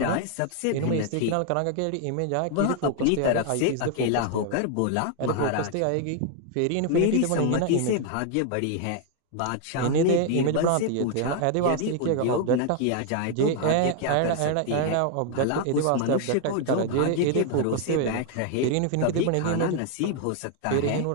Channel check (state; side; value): different; both; correlation 0.00